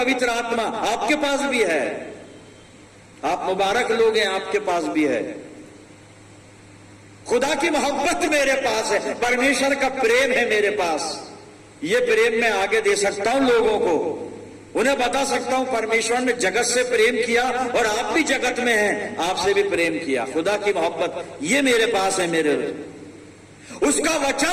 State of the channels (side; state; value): both; identical; correlation 1.00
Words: आत्मा आपके पास भी है, आप मुबारक लोग हैं, आपके पास भी है। खुदा की मोहब्बत मेरे पास है, परमेश्वर का प्रेम है मेरे पास। ये प्रेम मैं आगे दे सकता हूं लोगों को, उन्हें बता सकता हूं परमेश्वर ने जगत से प्रेम किया और आप भी जगत में हैं, आपसे भी प्रेम किया। खुदा की मोहब्बत ये मेरे पास है, मेरे उसका